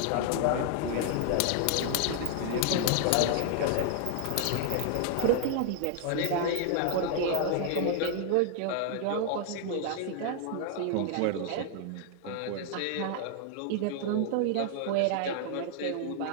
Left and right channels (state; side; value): different; both; correlation 0.00